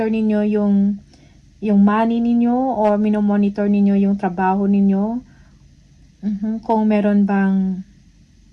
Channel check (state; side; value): identical; both; correlation 1.00